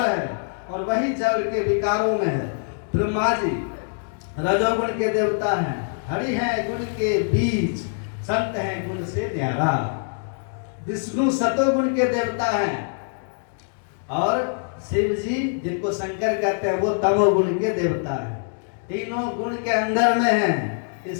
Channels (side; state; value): right; silent; digital silence